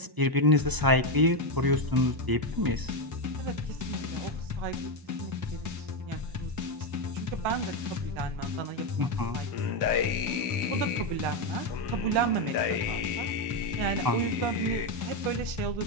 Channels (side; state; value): left; late; 1.0 ms